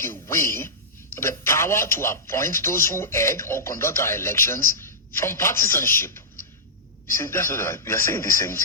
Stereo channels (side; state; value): both; normal; correlation -0.13